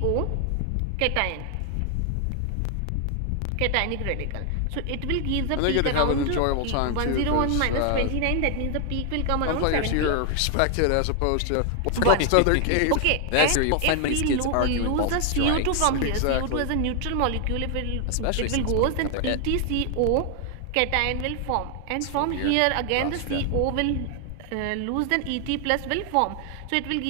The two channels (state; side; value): different; both; correlation 0.00